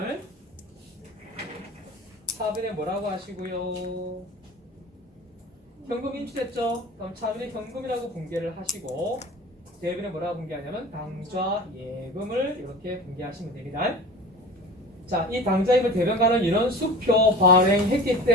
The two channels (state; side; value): normal; both; correlation 0.38